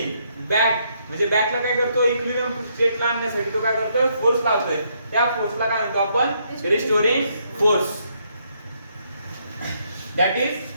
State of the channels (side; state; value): both; inverted; correlation -0.73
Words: back. म्हणजे बॅकला काय करतो, इक्विलिब्रियम स्टेटला आणण्यासाठी तो काय करतोय, फोर्स लावतोय. त्या फोर्सला काय म्हणतो आपण, restoring force, that is